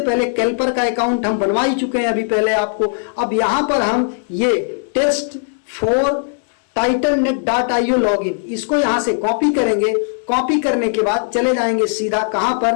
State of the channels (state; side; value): silent; right; 65 dB below the other